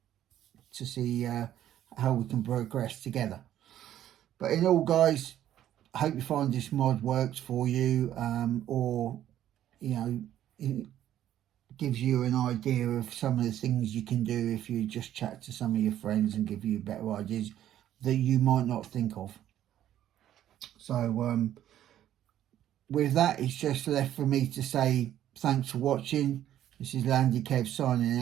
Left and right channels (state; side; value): quieter; left; 11.8 dB